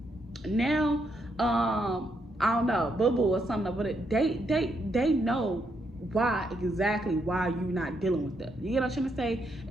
Now, I don't know, Boo Boo or something, but they know exactly why you're not dealing with them. You get what I'm trying to say?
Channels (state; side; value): normal; both; correlation 0.77